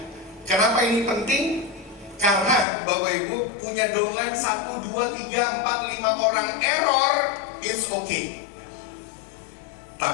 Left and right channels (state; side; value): drops out; right; at 2.7 s